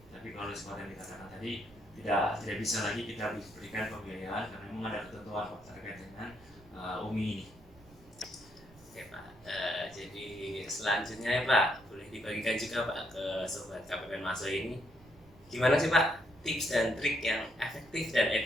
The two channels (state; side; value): noise; right; rumble, 24 dB below the sound